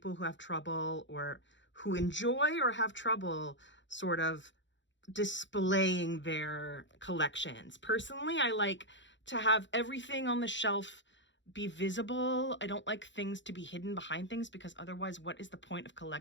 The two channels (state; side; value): late; right; 0.54 ms